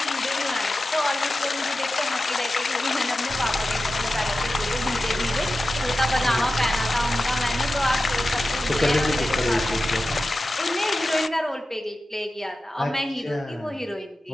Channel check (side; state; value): both; normal; correlation 0.93